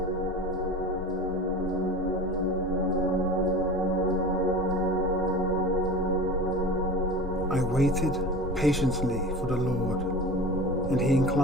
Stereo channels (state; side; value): normal; both; correlation 0.34